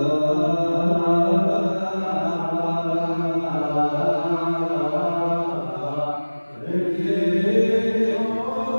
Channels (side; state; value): both; inverted; correlation -1.00